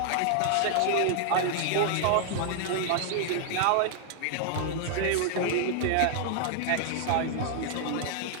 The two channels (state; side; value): different; both; correlation -0.01